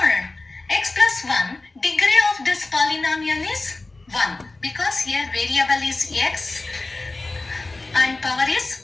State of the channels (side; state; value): right; quieter; 3.2 dB